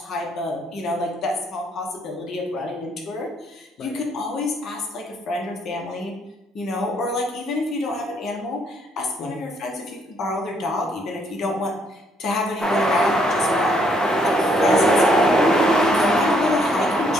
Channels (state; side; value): normal; both; correlation 0.69